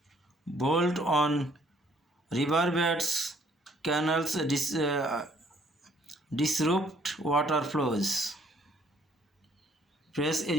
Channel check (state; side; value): normal; both; correlation 0.63